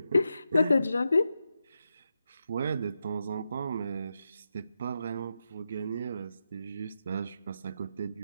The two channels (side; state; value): both; inverted; correlation -0.86